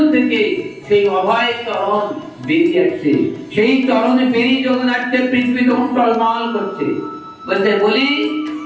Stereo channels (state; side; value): identical; both; correlation 1.00